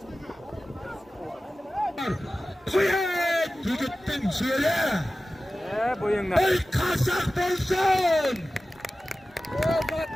Kuyet yigittin şöyle. Bo'yingdan. Ey kaşak bolsun.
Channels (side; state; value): both; normal; correlation 0.96